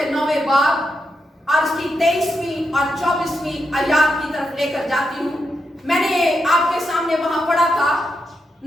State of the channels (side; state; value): both; normal; correlation 0.84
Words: 9ویں باب اور اس کی 23ویں اور 24ویں آیات کی طرف لے کر جاتی ہوں. میں نے آپ کے سامنے وہاں پڑھا تھا,